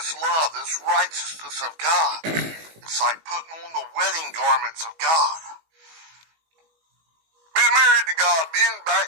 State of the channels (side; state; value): left; late; 19 ms